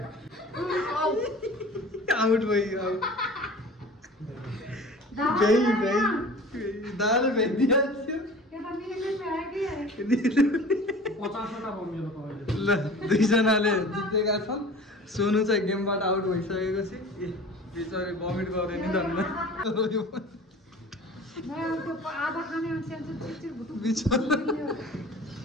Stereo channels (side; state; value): both; normal; correlation 0.41